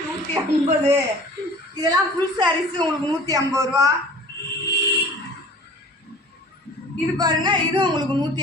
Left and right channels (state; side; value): normal; both; correlation 0.45